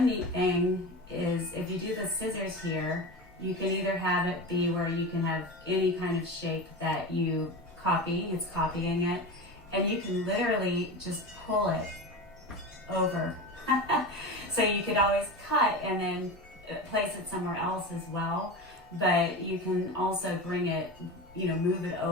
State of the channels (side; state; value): both; normal; correlation 0.27